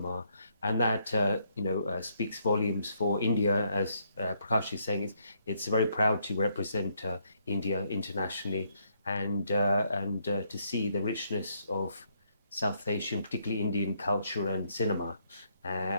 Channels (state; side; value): inverted; both; correlation -0.73